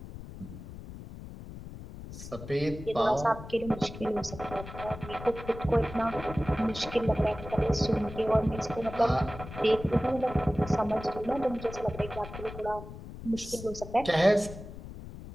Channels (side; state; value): left; noise; rumble, 12 dB below the sound